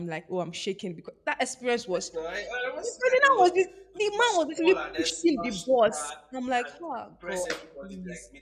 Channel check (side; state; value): both; identical; correlation 1.00